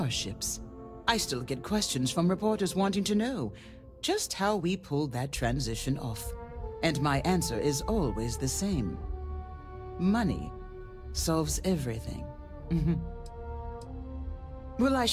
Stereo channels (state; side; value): identical; both; correlation 1.00